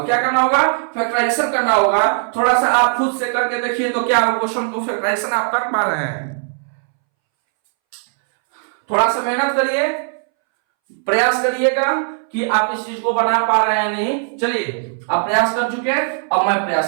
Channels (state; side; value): silent; left; 65 dB below the other